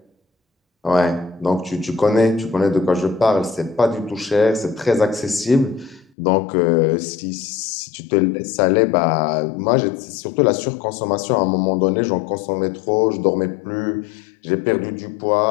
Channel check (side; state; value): right; drops out; at 6.1 s